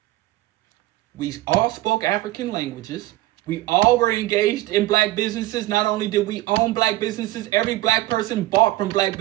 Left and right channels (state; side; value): quieter; left; 17.0 dB